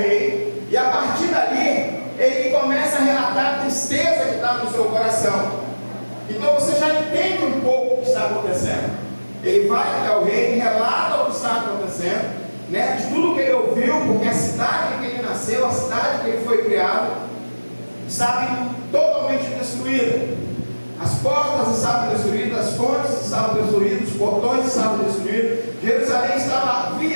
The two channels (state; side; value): inverted; both; correlation -1.00